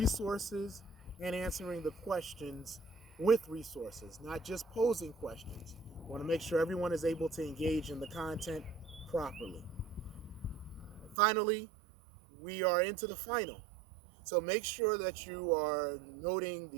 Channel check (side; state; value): left; drops out; at 11.2 s